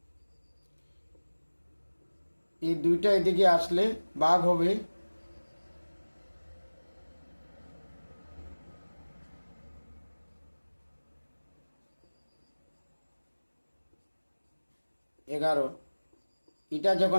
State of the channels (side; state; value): both; inverted; correlation -1.00